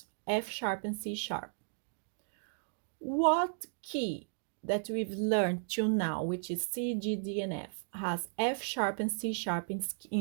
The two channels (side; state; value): left; silent; digital silence